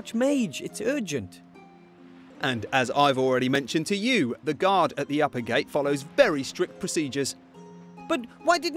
It's urgent. And as I've already mentioned to you, the guard at the upper gate follows very strict procedures. But why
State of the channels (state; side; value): identical; both; correlation 1.00